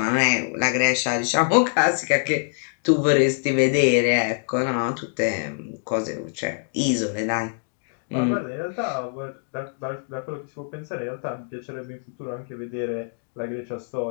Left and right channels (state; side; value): silent; right; digital silence